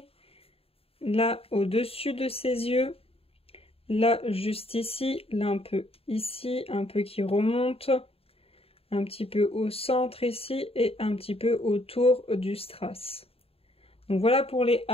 là au-dessus de ses yeux, là juste ici, là un peu ici, un peu qui remonte, un petit peu au centre ici et un petit peu autour du strass. Donc voilà pour les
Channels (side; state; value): right; late; 0.28 ms